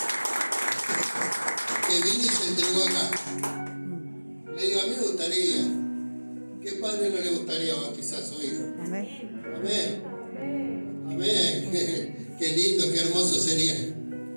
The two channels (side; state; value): both; inverted; correlation -1.00